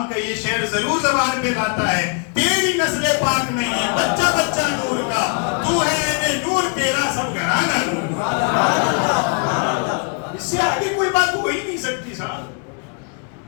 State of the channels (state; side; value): quieter; right; 39.3 dB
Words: کا یہ شعر ضرور زبان پہ لاتا ہے. تیری نسل پاک نہیں ہے بچہ بچہ نور کا، تو ہے اے نور تیرا سب گھرانہ نور. اس سے آگے کوئی بات ہو ہی نہیں سکتی صاحب.